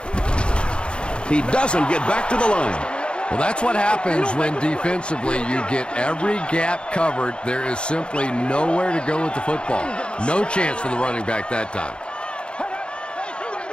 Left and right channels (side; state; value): right; late; 0.055 ms